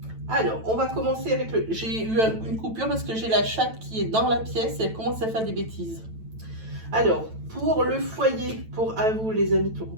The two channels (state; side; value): late; left; 9.0 ms